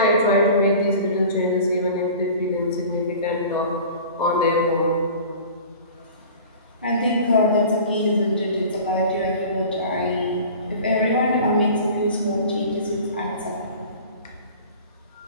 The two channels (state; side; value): inverted; both; correlation -0.41